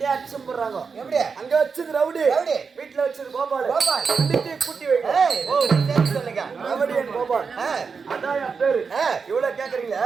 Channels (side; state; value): left; quieter; 5.4 dB